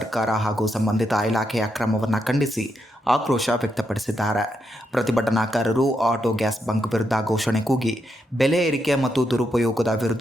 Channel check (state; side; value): normal; both; correlation 0.81